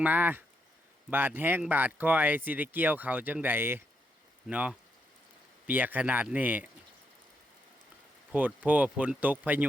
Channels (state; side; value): normal; both; correlation 0.79